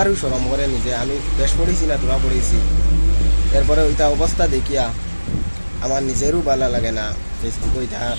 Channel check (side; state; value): both; inverted; correlation -1.00